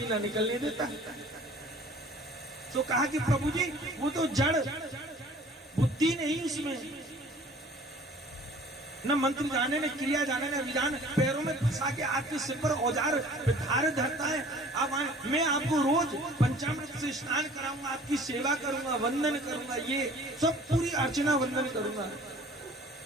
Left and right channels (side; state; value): both; normal; correlation 0.50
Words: ना निकलने देता। तो कहा कि प्रभु जी वो तो जड़ बुद्धि नहीं, उसमें न मंत्र जाने न क्रिया जाने न विधान, पैरों में फंसा के आपके सिर पर औजार धार धरता है। अब मैं आपको रोज पंचामृत से स्नान कराऊंगा, आपकी सेवा करूंगा, वंदन करूंगा, ये सब पूरी अर्चना वंदन करूंगा।